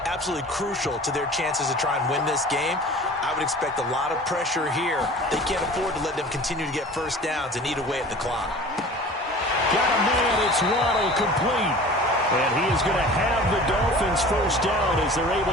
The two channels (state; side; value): normal; both; correlation 0.42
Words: absolutely crucial to their chances to try and win this game. I would expect a lot of pressure here. They can't afford to let them continue to get first downs and eat away at the clock. Got a man, it's Waddle, complete. And he is going to have the Dolphins first down as they're able